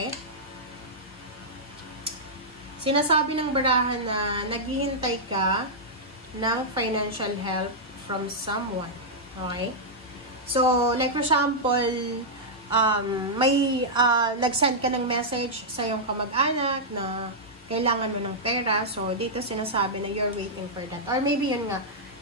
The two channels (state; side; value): normal; both; correlation -0.09